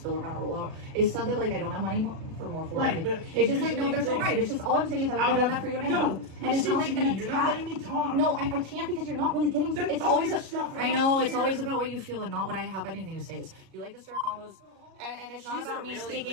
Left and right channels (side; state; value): left; late; 37 ms